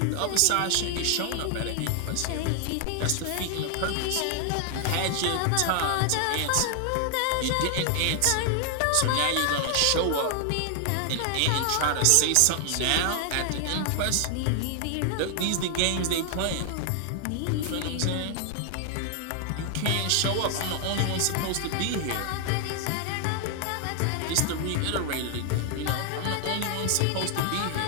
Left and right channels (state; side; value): different; both; correlation 0.00